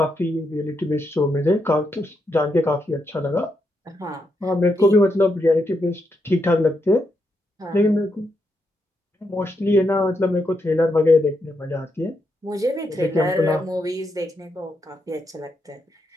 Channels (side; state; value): both; normal; correlation 0.82